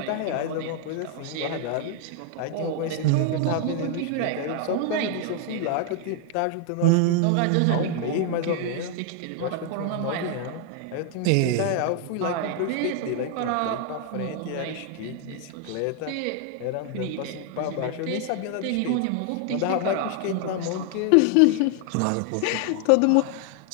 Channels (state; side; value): different; both; correlation 0.00